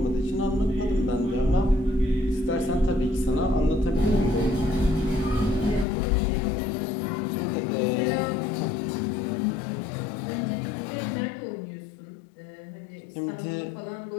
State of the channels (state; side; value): drops out; right; at 5.9 s